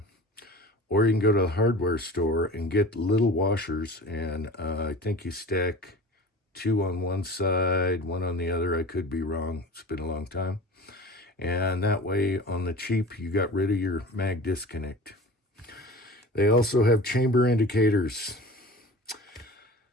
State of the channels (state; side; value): normal; both; correlation 0.38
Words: Or you can go to the hardware store and get little washers, and I think you stack 2 on one side, 1 on the other. I could be wrong. It's been a long time. And that way, on the cheap, you got rid of your mag disconnect. They also have chamber indicators.